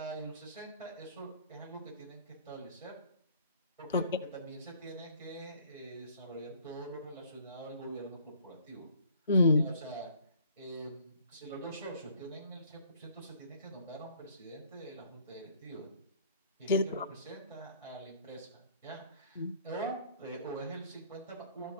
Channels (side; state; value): both; inverted; correlation -0.56